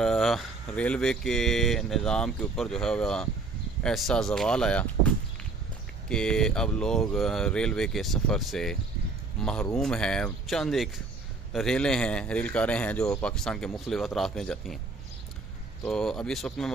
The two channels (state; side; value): quieter; left; 3.7 dB